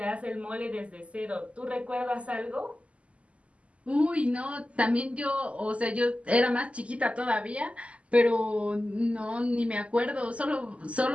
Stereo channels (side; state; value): left; late; 0.061 ms